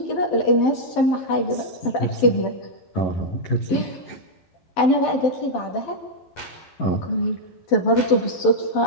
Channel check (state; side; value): late; right; 12 ms